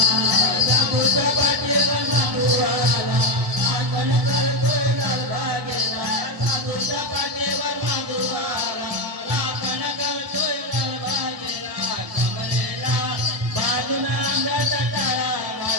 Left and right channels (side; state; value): left; late; 1.7 ms